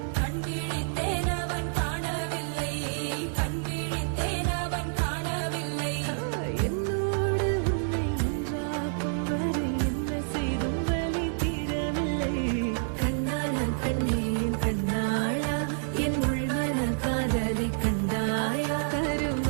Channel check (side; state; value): left; silent; digital silence